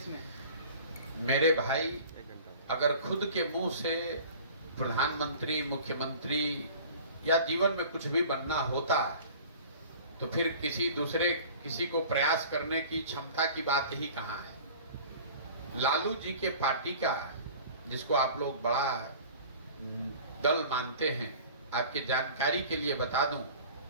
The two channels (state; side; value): inverted; both; correlation -0.43